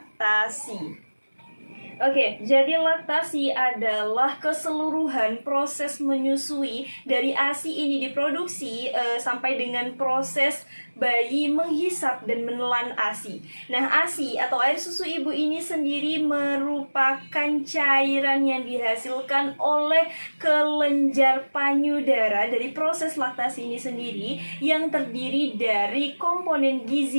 Oke, jadi laktasi adalah keseluruhan proses menyusui dari ASI ini diproduksi sampai dengan proses bayi menghisap dan menelan ASI. Nah, ASI atau air susu ibu ini sendiri merupakan cairan yang dihasilkan oleh kelenjar payudara dari proses laktasi ini sendiri yang terdiri dari komponen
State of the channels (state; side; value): inverted; both; correlation -1.00